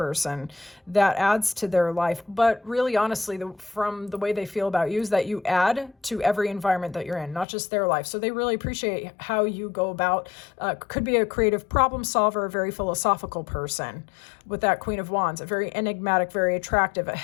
that adds to their life. But really, honestly, from the way they feel about you is that you add to every environment that you're in, not just their life. So they really appreciate how you go about, could be a creative problem solver, a very philosophical person with that Queen of Wands, a very enigmatic, very attractive, a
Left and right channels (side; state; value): right; drops out; at 7.5 s